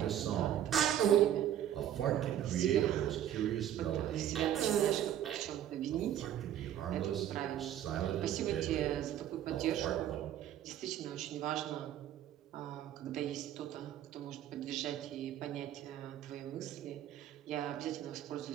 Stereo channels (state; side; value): quieter; left; 11.1 dB